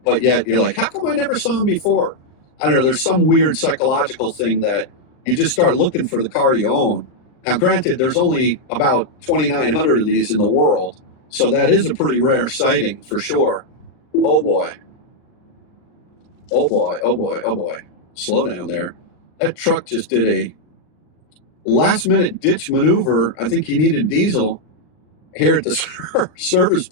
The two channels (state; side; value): late; right; 39 ms